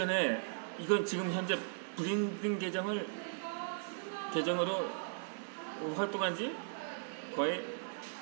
이건 지금 현재 브랜딩 계정으로 활동한 지 거의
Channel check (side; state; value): left; silent; digital silence